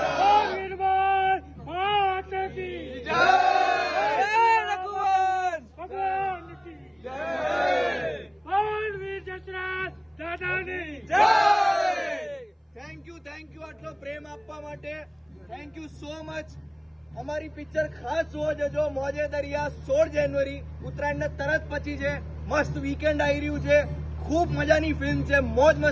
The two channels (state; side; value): identical; both; correlation 1.00